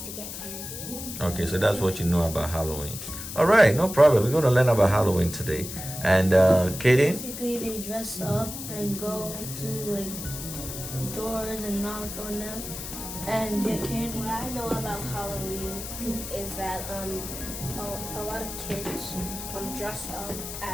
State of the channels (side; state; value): left; noise; hiss, 8 dB below the sound